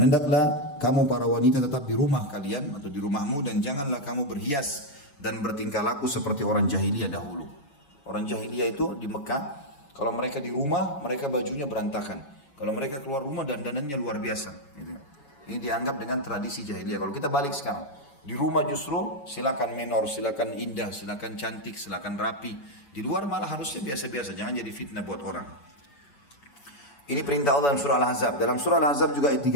hendaklah kamu para wanita tetap di rumah kalian atau di rumahmu, dan janganlah kamu berhias dan bertingkah laku seperti orang jahiliyah dahulu. Orang jahiliyah itu di Mekah, kalau mereka di rumah mereka bajunya berantakan. Kalau mereka keluar rumah dandanannya luar biasa. Gitu. Ini dianggap dengan tradisi jahiliyah. Kalau kita balik sekarang, di rumah justru silakan menor, silakan indah, silakan cantik, silakan rapi. Di luar malah harusnya biasa-biasa, jangan jadi fitnah buat orang. Ini perintah Allah dalam surah Al-Ahzab. Dalam surah Al-Ahzab juga ayat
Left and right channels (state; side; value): late; right; 7.1 ms